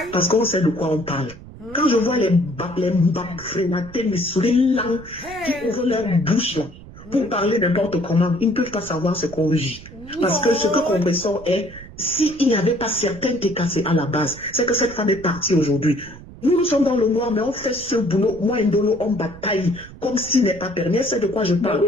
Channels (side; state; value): right; noise; rumble, 17 dB below the sound